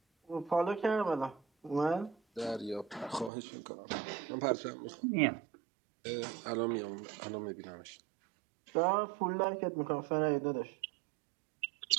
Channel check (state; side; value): drops out; left; at 3.3 s